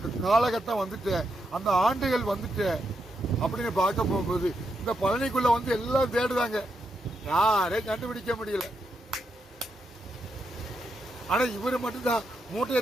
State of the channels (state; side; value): normal; both; correlation 0.82